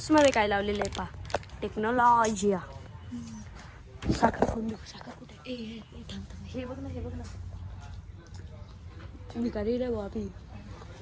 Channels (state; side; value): identical; both; correlation 1.00